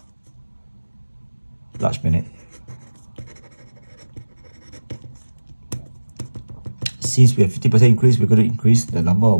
large minute. Since we have 50% increase, we're going to increase the number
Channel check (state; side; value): inverted; both; correlation -1.00